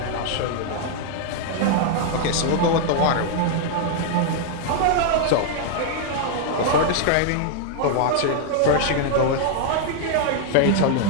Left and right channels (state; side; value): different; both; correlation -0.01